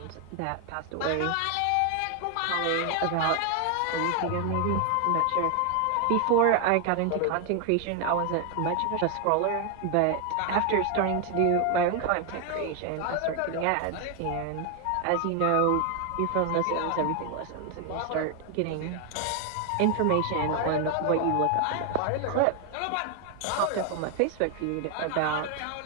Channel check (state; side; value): different; both; correlation 0.01